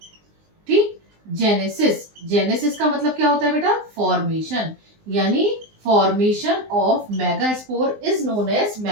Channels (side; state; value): left; late; 19 ms